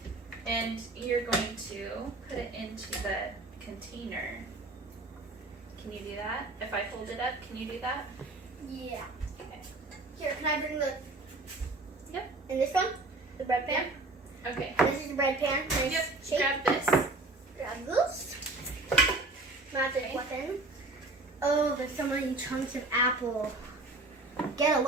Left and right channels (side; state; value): left; quieter; 3.0 dB